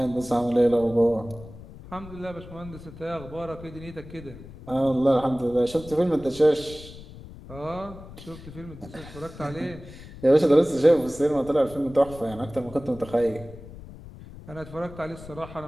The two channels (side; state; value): left; noise; rumble, 16 dB below the sound